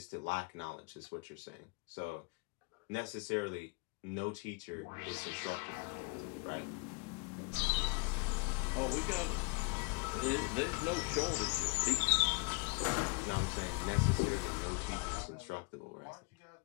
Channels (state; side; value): quieter; right; 30.3 dB